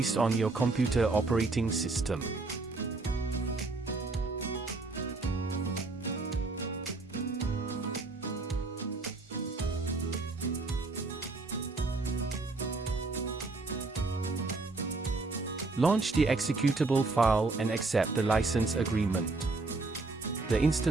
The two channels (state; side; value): quieter; left; 3.6 dB